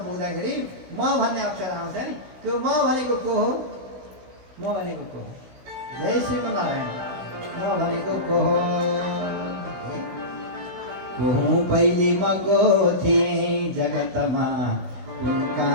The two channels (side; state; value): left; late; 16 ms